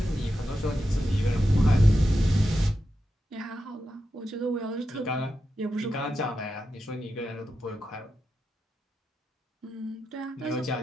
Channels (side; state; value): both; normal; correlation 0.88